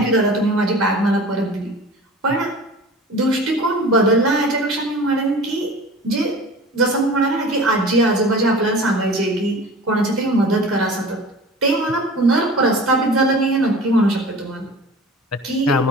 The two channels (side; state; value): both; normal; correlation 0.40